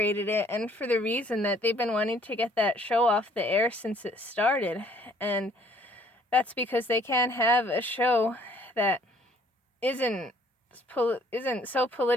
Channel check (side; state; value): both; normal; correlation 0.60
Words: it, and for the reason that they've been wanting to get that show off the air since it started. And that's because they can't have a show that isn't so